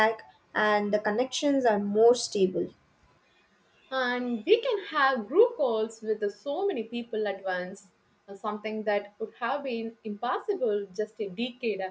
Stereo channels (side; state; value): both; identical; correlation 1.00